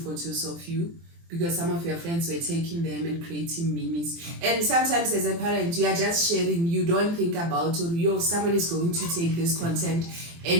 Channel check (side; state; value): left; late; 24 ms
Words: of you because some of your friends were taking them and creating memes. And sometimes as a parent, you are just sharing, you don't think about, or someone is going to take this content and